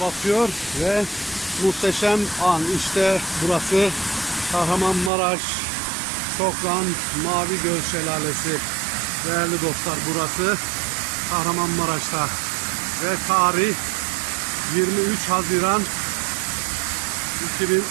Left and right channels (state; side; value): drops out; left; at 5.1 s